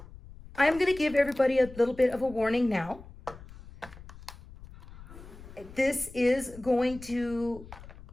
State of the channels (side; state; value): left; noise; rumble, 17 dB below the sound